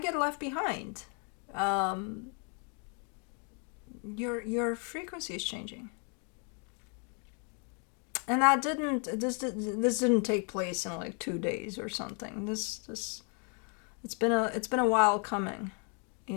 get left behind. Your frequency is changing. And that this didn't take place in like 2 days or something. It's been a while coming,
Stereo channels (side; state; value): right; quieter; 38.8 dB